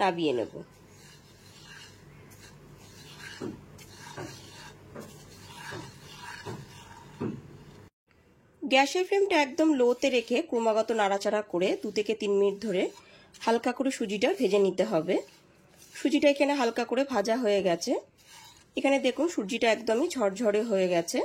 নাবিয়ে নেব। গ্যাসের ফ্লেমটা একদম লোতে রেখে ক্রমাগত নাড়াচাড়া করে 2 থেকে 3 মিনিট ধরে হালকা করে সুজিটা ভেজে নিতে হবে। সুজিটা এখানে হালকা করে ভাজা হয়ে গেছে। এখানে দেখুন সুজিটা একদমই ঝরঝরে হয়ে গেছে।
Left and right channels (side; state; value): both; identical; correlation 1.00